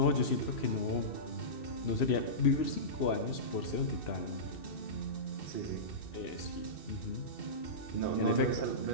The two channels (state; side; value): late; right; 2.7 ms